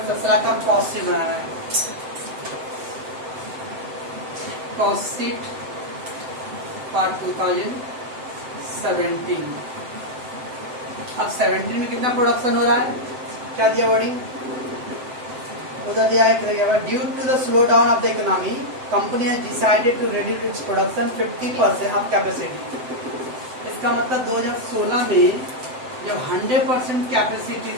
का कॉस्ट शीट बनाना है। Cost sheet for 2017। अब 17 में कितना प्रोडक्शन हो रहा है, क्या दिया वर्डिंग, उधर दिया है due to the slow down of the economy company has decided to reduce its production 50% of capacity. इसका मतलब 2016 में जब 100% कैपेसिटी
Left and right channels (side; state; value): left; late; 7.8 ms